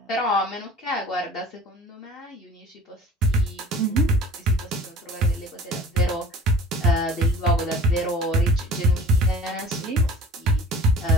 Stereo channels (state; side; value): normal; both; correlation 0.44